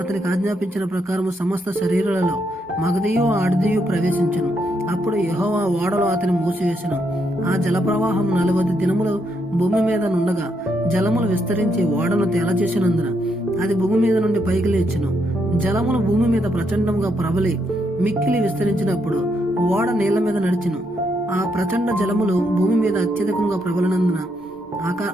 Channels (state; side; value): normal; both; correlation 0.77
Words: ఆజ్ఞాపించిన ప్రకారము సమస్త శరీరాలలో మగదియు ఆడదియు ప్రవేశించను. అప్పుడు యెహోవా ఓడలో అతని మూసివేసెను. ఆ జలప్రవాహం 40 దినములు భూమి మీద నుండగా జలములు విస్తరించి ఓడను తేలచేసినందున అది భూమి మీద నుండి పైకి లేచెను. జలములు భూమి మీద ప్రచండంగా ప్రబలి మిక్కిలి విస్తరించినప్పుడు ఓడ నీళ్ల మీద నడిచెను. ఆ ప్రచండ జలములు భూమి మీద అత్యధికంగా ప్రబలినందున